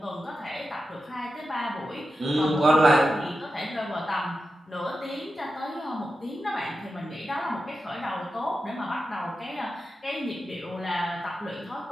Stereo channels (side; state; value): both; normal; correlation 0.91